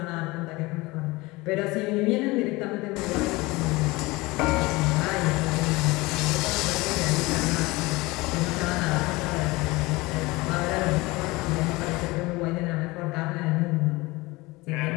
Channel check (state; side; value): quieter; right; 22.2 dB